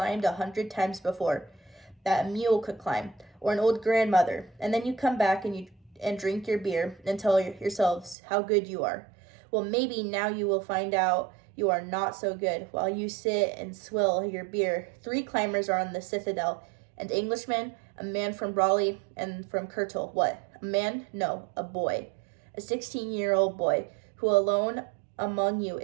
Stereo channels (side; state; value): left; drops out; at 8.2 s